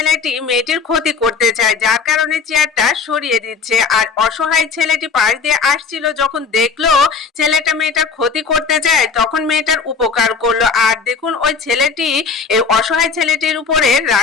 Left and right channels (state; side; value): quieter; right; 5.3 dB